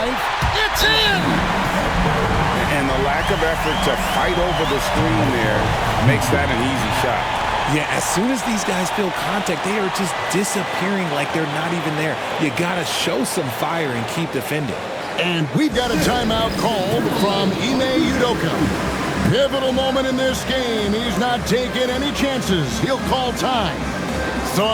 It's in! And the lack of effort to fight over the screen there makes that an easy shot. Yeah, as soon as these guys feel contact, they are just disappearing like they're not even there. You got to show some fire and keep defending. And we've got a timeout called from Ime Udoka. Pivotal moment in this game. He's not taking any chances. He'll call time. So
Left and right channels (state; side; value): identical; both; correlation 1.00